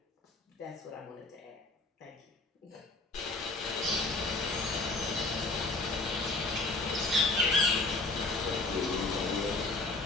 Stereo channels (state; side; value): quieter; right; 3.2 dB